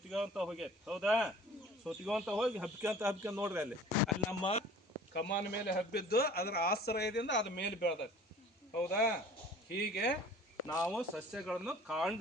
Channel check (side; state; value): both; normal; correlation 0.47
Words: ಹೋಗೈತಿ. ಹೌದಾ? ಸುತ್ತಿಗೋಂತ ಹೋಗಿ ಹಬ್ಕೊಂತ ನೋಡ್ರಿ. ಅಲ್ಲಿ ನಮ್ಮ ಕಮಾನ್ ಮೇಲೆ ಹಬ್ಬಿದ್ದು ಅದರ ಆಶ್ರಯದಿಂದ ಅದ ಮೇಲೆ ಬೆಳೆದೈತಿ. ಹೌದಾ? ಹೀಗೆ ನಾವು ಸಸ್ಯಗಳನ್ನು